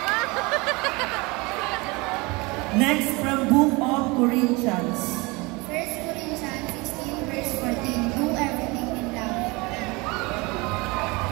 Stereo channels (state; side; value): quieter; left; 25.5 dB